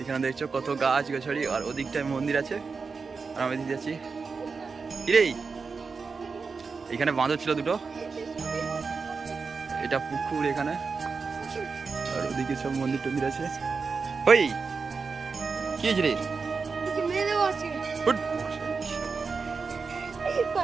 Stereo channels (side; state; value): left; quieter; 4.9 dB